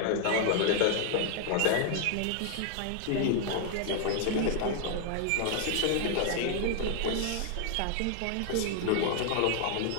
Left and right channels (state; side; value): different; both; correlation 0.00